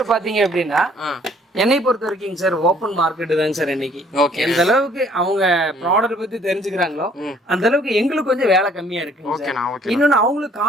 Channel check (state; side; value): normal; both; correlation 0.60